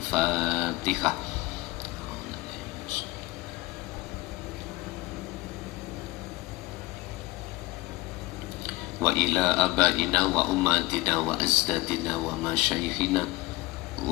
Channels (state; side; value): quieter; right; 20.3 dB